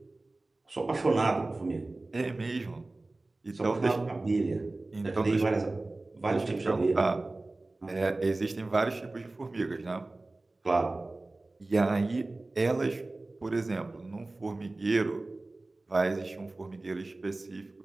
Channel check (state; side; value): quieter; left; 3.0 dB